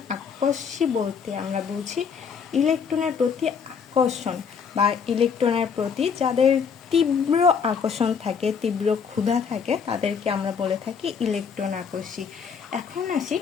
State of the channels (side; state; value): right; quieter; 6.3 dB